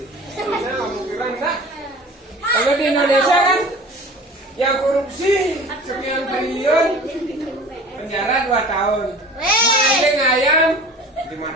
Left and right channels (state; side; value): normal; both; correlation 0.42